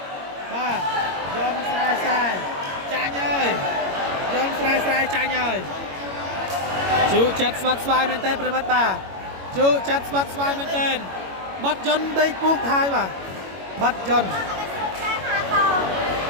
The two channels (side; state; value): left; late; 21 ms